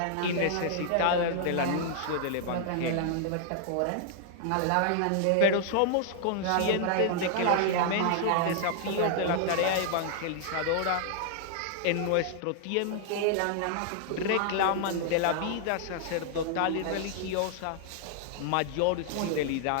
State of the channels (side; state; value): both; different; correlation 0.00